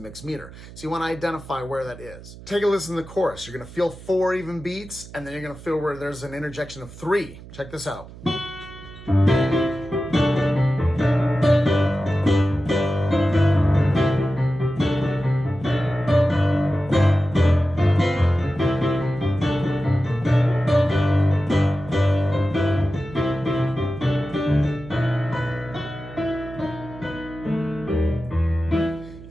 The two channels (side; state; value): right; noise; hum, 17 dB below the sound